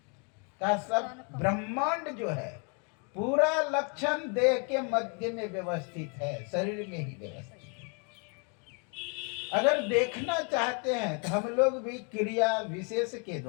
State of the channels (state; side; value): quieter; right; 37.1 dB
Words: का सब ब्रह्मांड जो है पूरा लक्षण देह के मध्य में व्यवस्थित है, शरीर में ही व्यवस्थित है। अगर देखना चाहते हैं तो हम लोग भी क्रिया विशेष के